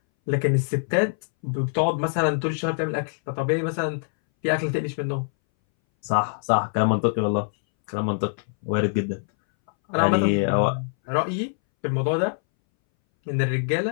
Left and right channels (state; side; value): silent; right; 61 dB below the other